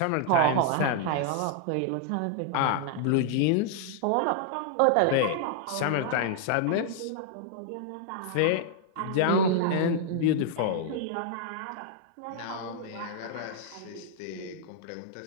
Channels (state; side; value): different; both; correlation -0.01